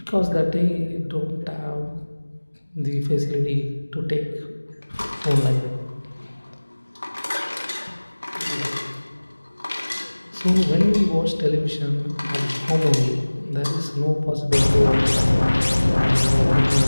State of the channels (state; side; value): inverted; both; correlation -1.00